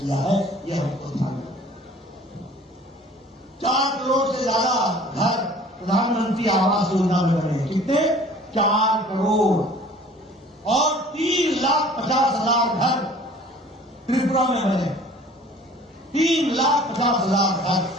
है। यह हमको ध्यान रखना। 4 करोड़ से ज्यादा घर प्रधानमंत्री आवास योजना में बने। कितने? 4 करोड़। और 3,50,000 घर त्रिपुरा में बने। 3,50,000 घर।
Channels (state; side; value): normal; both; correlation 0.49